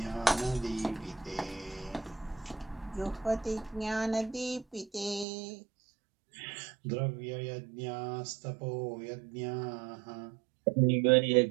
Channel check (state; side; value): drops out; left; at 5.2 s